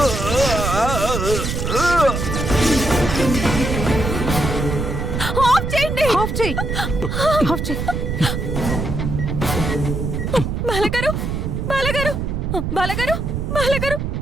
ఆఫ్ చేయండి. ఆఫ్ చేయి. ఆఫ్ చేయి. బాలగారు, బాలగారు, బాలగారు, బాలగారు,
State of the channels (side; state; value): right; noise; rumble, 2 dB below the sound